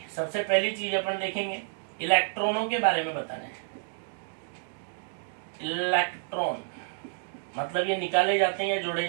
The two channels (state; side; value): silent; left; digital silence